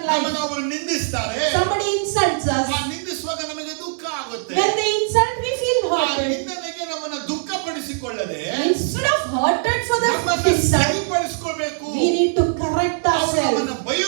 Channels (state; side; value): silent; left; 65 dB below the other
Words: ನಮ್ಮನ್ನ life. ಅವರು ನಿಂದಿಸ್ತಾರೆ, Somebody insults us. ಆ ನಿಂದಿಸುವಾಗ ನಮಗೆ ದುಃಖ ಆಗುತ್ತೆ. When they insult, we feel ಆ hurt. ನಿಂದನೆಗೆ ನಮ್ಮನ್ನ ದುಃಖ ಪಡಿಸಿಕೊಳ್ಳಿ. ಪಡಿಸಿಕೊಳ್ಳದೆ instead of hurted for the ನಮ್ಮನ್ನು insult, ಸರಿಪಡಿಸಿಕೊಳ್ಳಬೇಕು. we need to correct ಅವರು ourselves. ನಮ್ಮನ್ನ